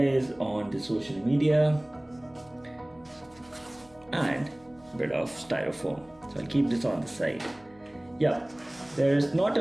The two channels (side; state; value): left; noise; hum, 29 dB below the sound